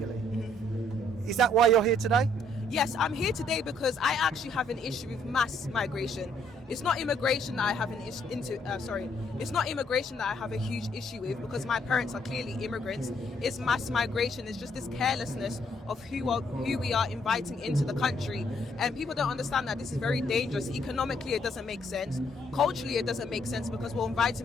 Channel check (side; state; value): both; normal; correlation 0.68